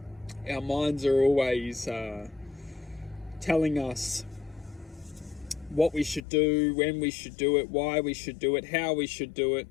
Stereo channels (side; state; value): right; drops out; at 6.2 s